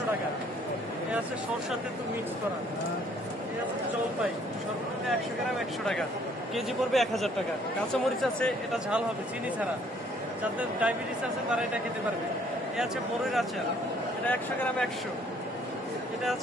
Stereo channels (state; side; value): normal; both; correlation 0.62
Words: টাকা। এ আছে সরষার তেঁতুল মিক্স করা। এ আছে জলপাই সর্বনিম্ন 100 গ্রাম 100 টাকা, কেজি পড়বে 1000 টাকা। কাঁচামরিচ আছে, এটা ঝাল হবে চিনি ছাড়া, যাদের ডায়াবেটিস আছে তারা এটা খেতে পারবে। এ আছে বড়ইয়ের আচার, এটা 100 গ্রাম 100। এটা